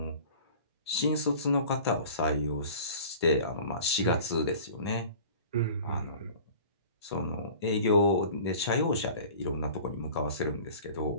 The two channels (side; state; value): both; inverted; correlation -0.43